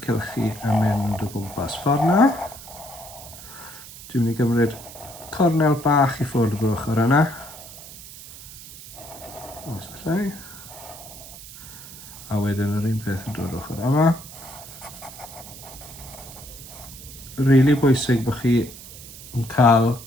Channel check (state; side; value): noise; right; hiss, 15 dB below the sound